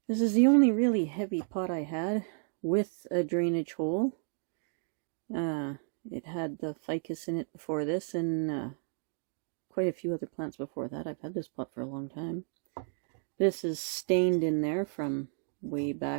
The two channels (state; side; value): silent; left; 56 dB below the other